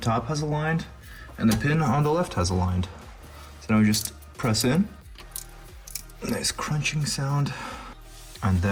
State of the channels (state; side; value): identical; both; correlation 1.00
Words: has aligned, and the pin on the left has aligned. So now we just press in. Nice crunching sound. And